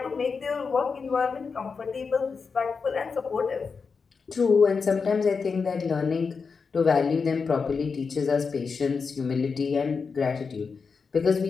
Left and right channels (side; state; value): right; quieter; 5.2 dB